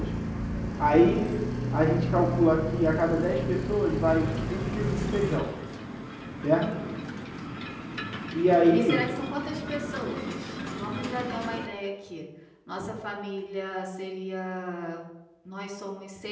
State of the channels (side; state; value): both; identical; correlation 1.00